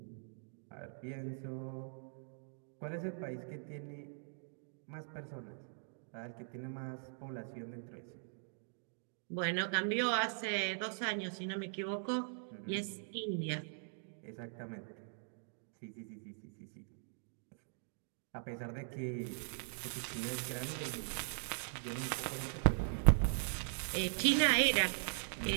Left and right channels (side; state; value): left; silent; digital silence